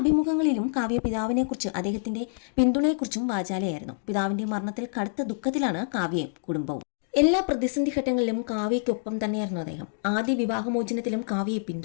കാവ്യ പിതാവിനെക്കുറിച്ച് അദ്ദേഹത്തിന്റെ പിന്തുണയെക്കുറിച്ചും വാചാലയായിരുന്നു. പിതാവിന്റെ മരണത്തിൽ കടുത്ത ദുഃഖത്തിലാണ് കാവ്യയും കുടുംബവും. എല്ലാ പ്രതിസന്ധി ഘട്ടങ്ങളിലും കാവ്യയ്ക്കൊപ്പം തന്നെയായിരുന്നു അദ്ദേഹം. ആദ്യ വിവാഹമോചനത്തിലും കാവ്യയെ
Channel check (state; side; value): silent; right; digital silence